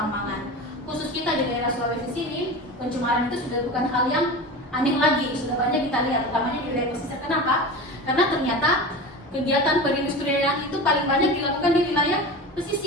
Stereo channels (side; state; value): both; normal; correlation 0.29